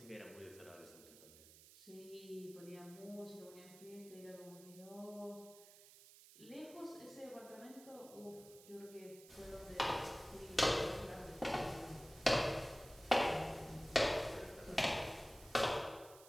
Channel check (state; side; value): noise; right; hiss, 19 dB below the sound